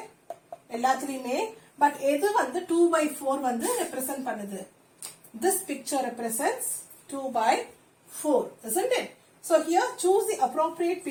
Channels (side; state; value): both; identical; correlation 1.00